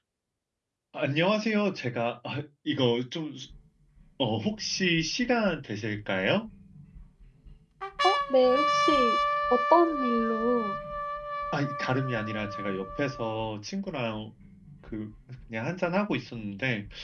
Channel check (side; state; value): both; identical; correlation 1.00